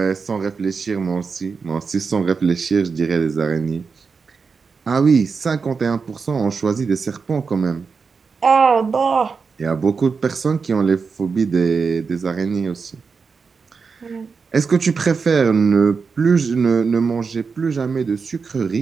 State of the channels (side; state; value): left; quieter; 5.2 dB